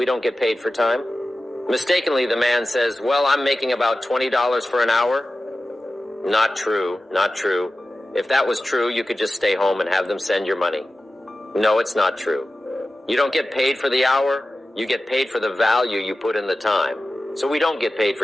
don't get paid for time. Mistakenly, the man says, well, I'm making about $20 for an hour. Not true, not true. If that was true, you could just stay home and have them send your money. No, it's not true. You don't get paid for the hour, you get paid for the value you put in the time. So we don't get paid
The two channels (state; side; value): normal; both; correlation 0.94